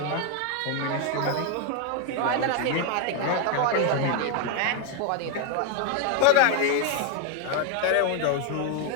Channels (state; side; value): different; both; correlation 0.01